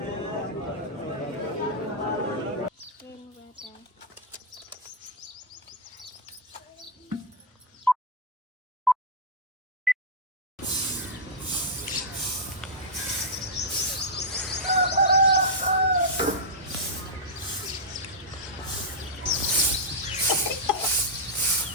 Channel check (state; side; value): normal; both; correlation -0.06